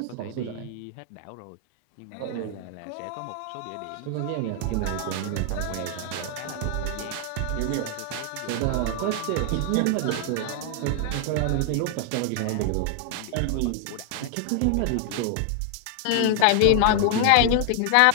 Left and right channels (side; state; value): both; different; correlation 0.00